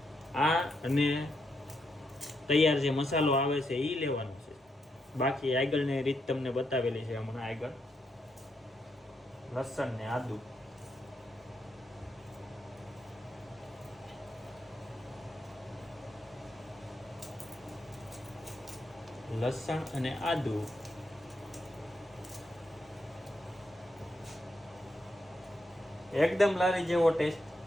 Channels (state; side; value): normal; both; correlation 0.81